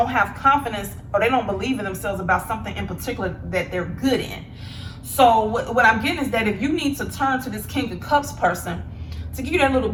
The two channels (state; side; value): identical; both; correlation 1.00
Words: have confidence or they don't believe in themselves about something in particular that they're good in. So what I'm getting is that if you need to turn to this King of Cups person to give you that little